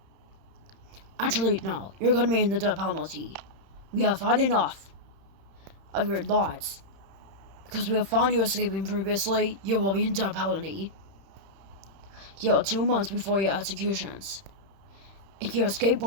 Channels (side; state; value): left; late; 31 ms